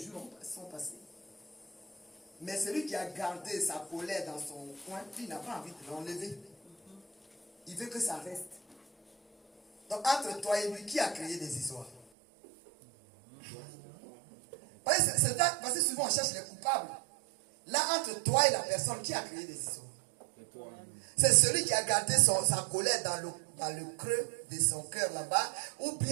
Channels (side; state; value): left; drops out; at 12.1 s